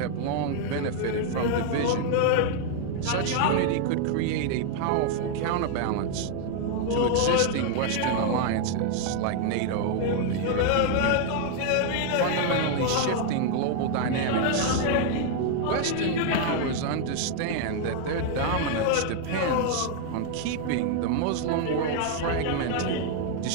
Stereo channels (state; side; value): different; both; correlation 0.00